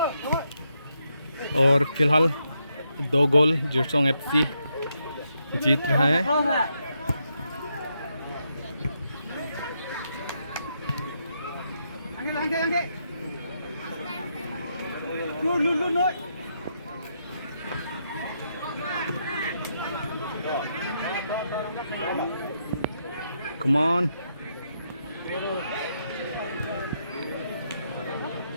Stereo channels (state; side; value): inverted; both; correlation -0.80